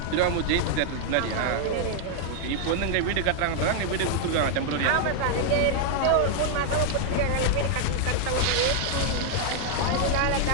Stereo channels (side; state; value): both; different; correlation 0.00